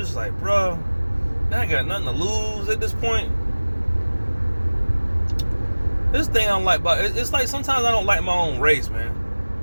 like, bro, I ain't got nothing to lose at this point. This thing I don't like about it's like sometimes I don't like my own race, man.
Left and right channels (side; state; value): both; inverted; correlation -1.00